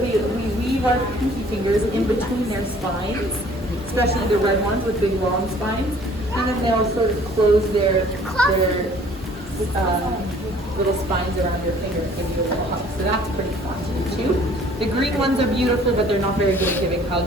our pinky fingers in between their spines, especially the red ones with big long spines, and then they'll sort of close their little spines around your finger and give you a little hug. So that's pretty fun to do too. The green ones are beautiful, but they're not very good at giving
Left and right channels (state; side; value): normal; both; correlation 0.55